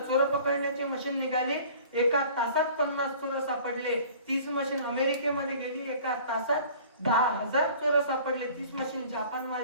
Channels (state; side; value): inverted; both; correlation -0.47